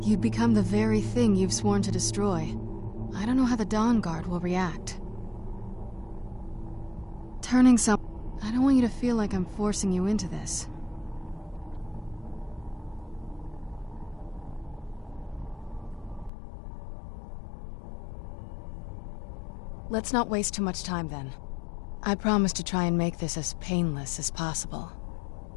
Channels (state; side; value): drops out; right; at 16.3 s